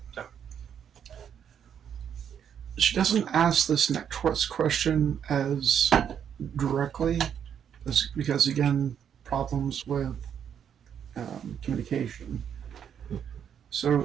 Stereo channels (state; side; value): quieter; left; 8.5 dB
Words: so she doesn't ask this next question as directly because again, problems with communication. So,